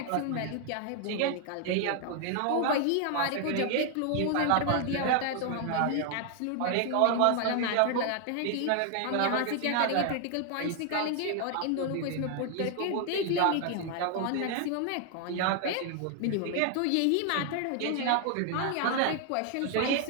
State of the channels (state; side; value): different; both; correlation 0.00